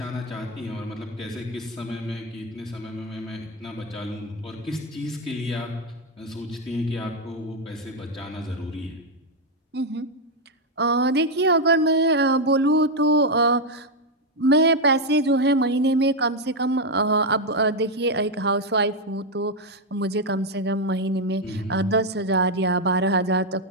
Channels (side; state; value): both; normal; correlation 0.03